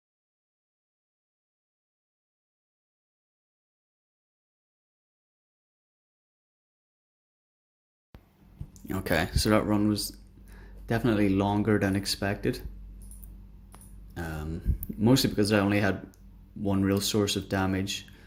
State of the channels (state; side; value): identical; both; correlation 1.00